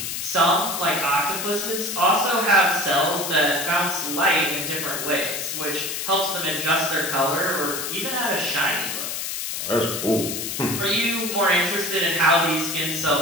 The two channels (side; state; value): left; noise; hiss, 4 dB below the sound